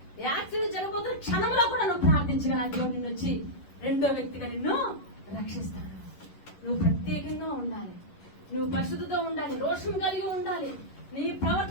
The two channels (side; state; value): right; late; 11 ms